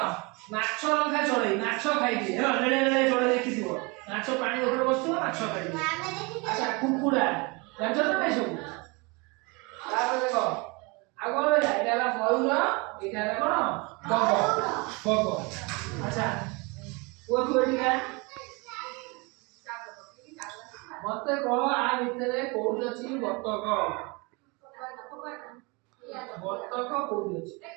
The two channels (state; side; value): quieter; left; 28.3 dB